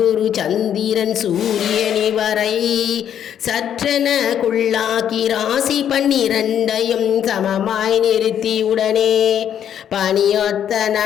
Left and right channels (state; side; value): quieter; right; 9.5 dB